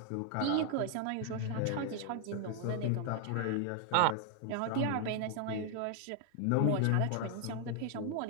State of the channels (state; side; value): different; both; correlation 0.00